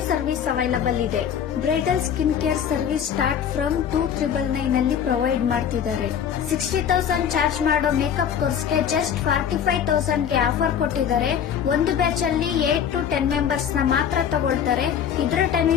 service available ಇದೆ. Bridal skin care service start from 2,999 ಅಲ್ಲಿ provide ಮಾಡ್ತಿದ್ದಾರೆ. 60,000 charge ಮಾಡೋ makeup ಕೋರ್ಸ್ಗೆ just 45,000 ಗೆ offer ಕೊಟ್ಟಿದ್ದಾರೆ. ಒಂದು ಬ್ಯಾಚ್ ಅಲ್ಲಿ 8 to 10 ಮೆಂಬರ್ಸ್ ನ ಮಾತ್ರ ತಗೊಳ್ತಾರೆ. ಇದರ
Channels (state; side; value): quieter; right; 8.5 dB